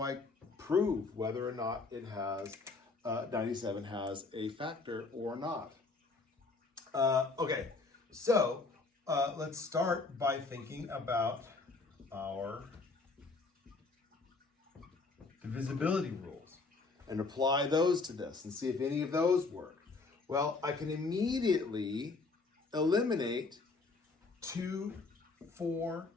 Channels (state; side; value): quieter; right; 3.9 dB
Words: I prove whether or not it has 97 has a factor or not? Okay, so let's start by thinking about our divisibility rules and apply those to this and see if any of those work. Well, I can immediately eliminate 2, 4,